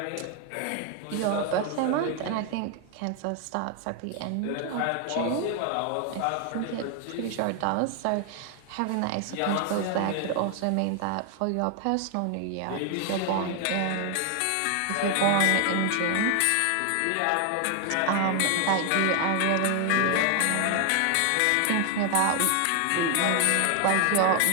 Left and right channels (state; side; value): different; both; correlation 0.00